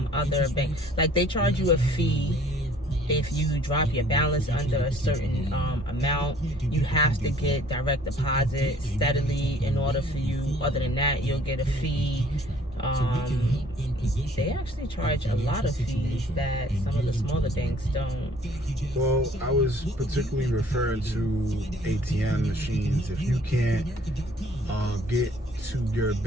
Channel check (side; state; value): both; normal; correlation 0.56